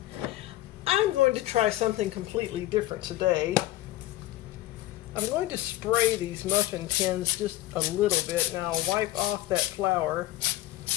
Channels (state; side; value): quieter; right; 15.5 dB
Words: I'm going to try something completely different today. I'm going to spray these muffin tins just a little bit. Now I'll wipe off that flour.